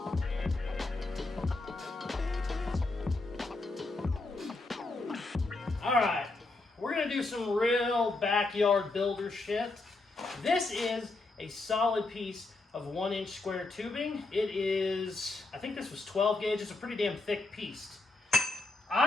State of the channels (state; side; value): quieter; right; 3.2 dB